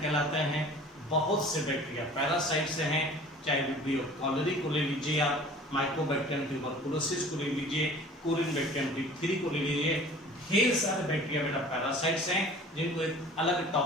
कहलाते हैं। बहुत से बैक्टीरिया पैरासाइट से हैं, चाहे विब्रियो कॉलरी को ले लीजिए, आप माइकोबैक्टीरियम ट्यूबरकुलोसिस को ले लीजिए, कोरिन बैक्टीरियम डिप्थीरी को ले लीजिए, ढेर सारे बैक्टीरिया बेटा पैरासाइट्स हैं, जिनको एक अलग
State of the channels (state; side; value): normal; both; correlation 0.45